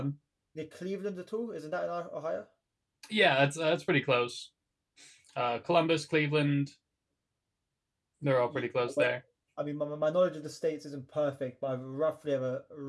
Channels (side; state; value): both; identical; correlation 1.00